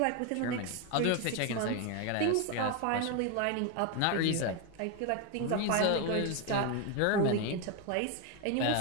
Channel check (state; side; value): different; both; correlation 0.01